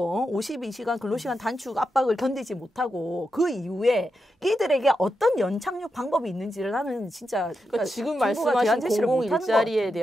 52시간 근로시간 단축 압박을 견디지 못하고 그 이후에 이들에게 어떤 연착륙 방법이 있는지를 나는 진짜 그러니까 지금 정부가 말씀하신 대안 제시를 공공 못하는 것 일자리에 같아요.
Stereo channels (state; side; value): normal; both; correlation 0.87